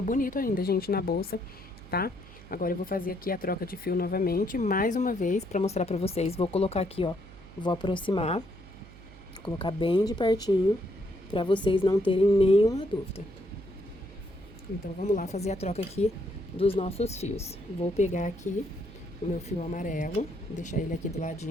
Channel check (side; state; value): right; noise; hum, 19 dB below the sound